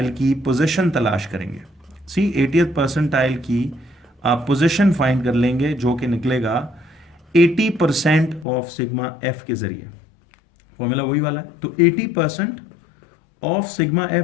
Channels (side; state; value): right; drops out; at 8.5 s